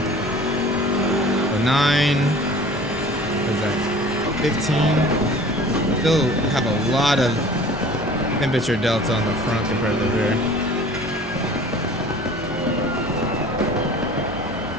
9, what is that? 15. Still have a lot of temperature delta on the front compared to the rear.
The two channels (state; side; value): normal; both; correlation 0.45